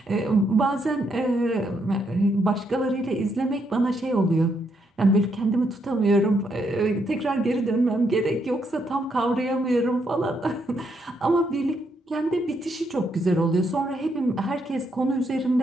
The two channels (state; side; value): normal; both; correlation 0.76